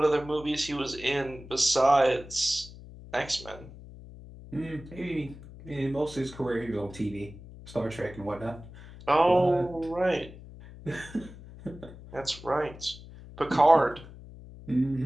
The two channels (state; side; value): noise; left; hum, 17 dB below the sound